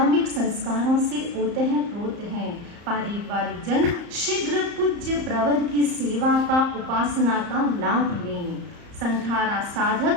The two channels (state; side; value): late; left; 34 ms